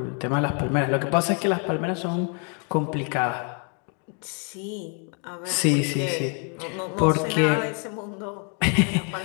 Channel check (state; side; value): quieter; right; 39.2 dB